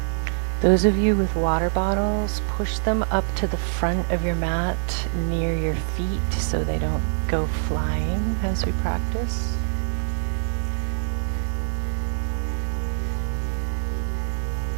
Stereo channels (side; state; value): left; silent; digital silence